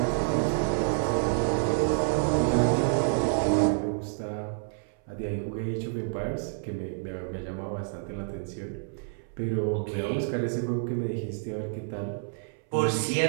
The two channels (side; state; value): left; silent; 59 dB below the other